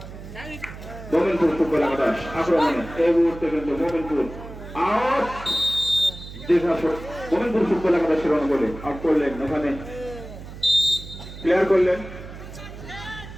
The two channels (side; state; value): right; noise; hum, 13 dB below the sound